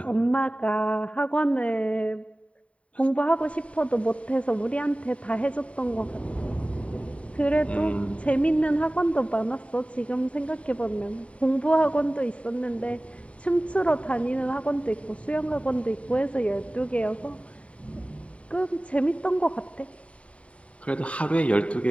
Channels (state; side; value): late; right; 0.064 ms